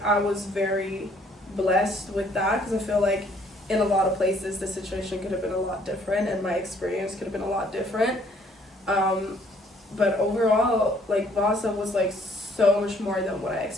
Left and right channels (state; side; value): normal; both; correlation 0.62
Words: I was very blessed with that, because I feel like in a lot of places the situation could have been a lot different and my experience could have been a lot different. But overall, like, Vasa was like so much more than what I